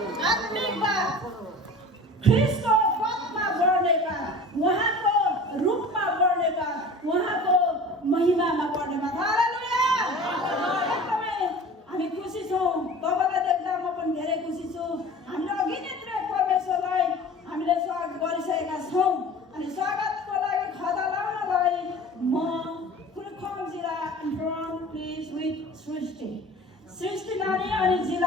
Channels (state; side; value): normal; both; correlation 0.40